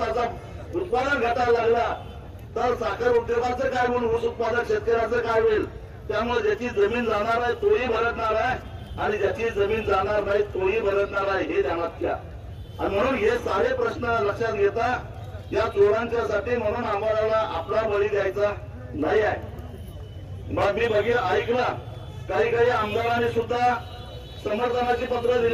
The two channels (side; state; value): both; identical; correlation 1.00